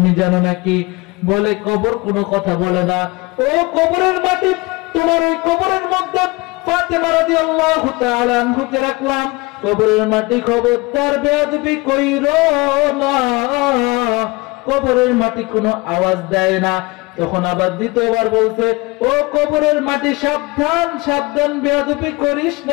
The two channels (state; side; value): quieter; right; 24.3 dB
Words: জানো নাকি? বলে, কবর কোনো কথা বলে না। ও কবরের মাটি, তোমার ওই কবরের মধ্যে ফাতেমা রাদিয়াল্লাহু তাআলা আনহুকে রাখলাম। কবরের মাটি, খবরদার বেয়াদবি কইরো না। কবরের মাটি কোনো আওয়াজ দেয় না। তখন আবার দ্বিতীয়বার বলছে, ও কবরের মাটি, সাবধান সাবধান, বেয়াদবি করিস